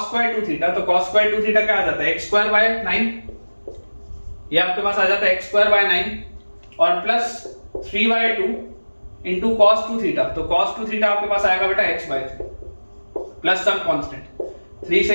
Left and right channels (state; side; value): inverted; both; correlation -1.00